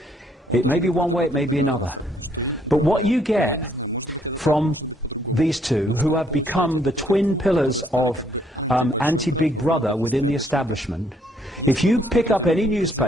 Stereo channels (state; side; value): normal; both; correlation 0.68